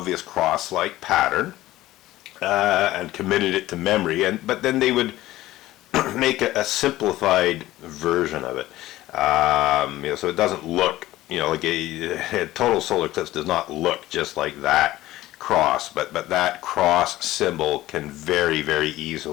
cross-like pattern and committed it to memory, but then they would make a simplified version of it. So it doesn't look, like a total solar eclipse does not look just like that cross, but that cross symbol can very, very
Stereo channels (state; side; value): quieter; right; 16.1 dB